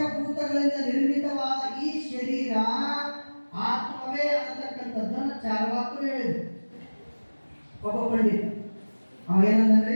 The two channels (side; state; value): both; inverted; correlation -1.00